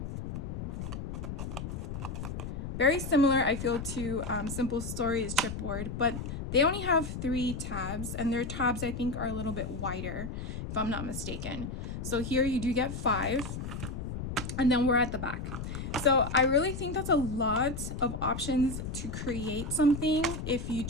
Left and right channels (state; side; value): noise; left; rumble, 6 dB below the sound